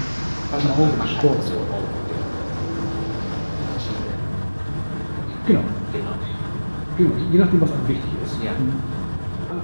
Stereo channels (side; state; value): both; inverted; correlation -1.00